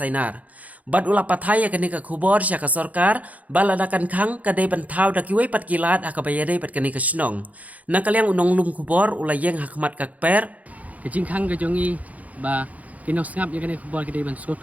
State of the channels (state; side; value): late; left; 0.073 ms